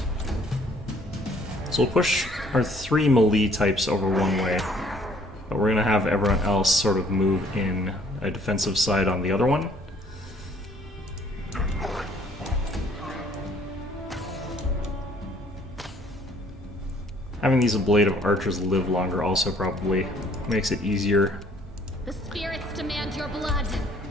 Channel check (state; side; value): normal; both; correlation 0.60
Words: So we'll push our 3 melee types over one way, but we're going to have everyone else sort of move in a defensive side on the other one. Having these Blade of Archers live longer also probably makes it easier. The spirits demand your blood.